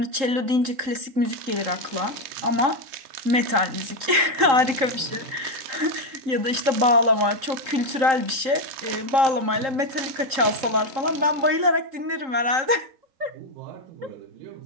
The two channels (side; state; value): left; late; 3.8 ms